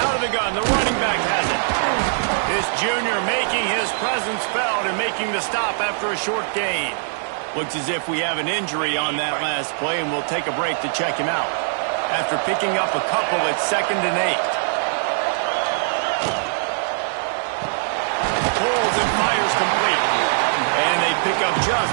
Out of the gun, the running back has it. This junior making his presence felt and making the stop after a short gain. Looks as if we have an injury on that last play, and we'll take a break to check him out. After picking up a couple at 2nd and 8. Pulls and fires complete. And they pick up just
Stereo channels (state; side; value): silent; left; digital silence